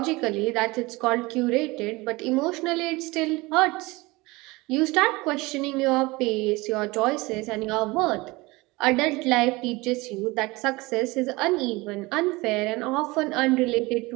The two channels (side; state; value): left; quieter; 22.6 dB